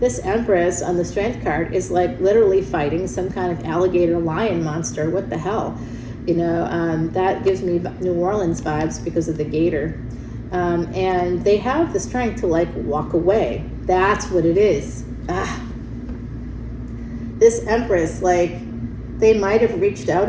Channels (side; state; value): both; identical; correlation 1.00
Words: Empress on the Strength card is like literally fighting some kind of alligator lion monster. What the hell? You know, that gives me New Orleans vibes because of the gator. And they have the strength to like walk away. That's what it is. This Empress, like, they might have reached out